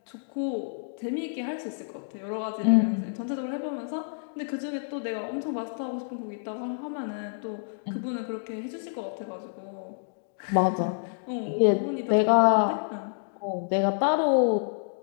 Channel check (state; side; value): silent; right; digital silence